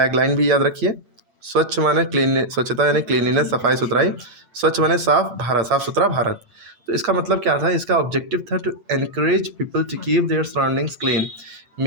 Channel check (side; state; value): left; late; 8.9 ms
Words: भी याद रखिए। स्वच्छ माने क्लीन, स्वच्छता यानी क्लीनलीनेस, सफाई सुथराई। स्वच्छ माने साफ भारत, साफ सुथरा भारत। तो इसका मतलब क्या था, इसका ऑब्जेक्टिव था to encourage people to keep their surroundings clean.